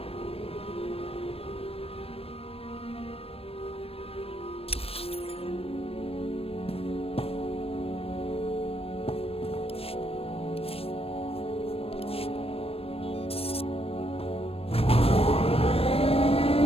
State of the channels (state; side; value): late; right; 0.28 ms